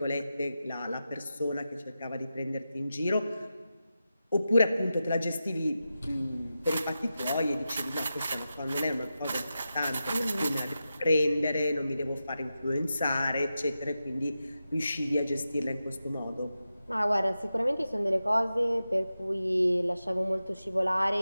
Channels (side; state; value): both; inverted; correlation -0.91